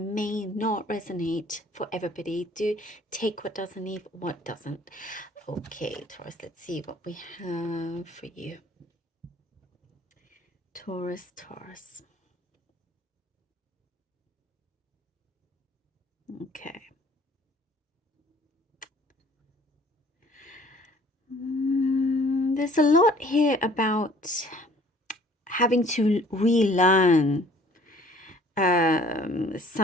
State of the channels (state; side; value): normal; both; correlation 0.54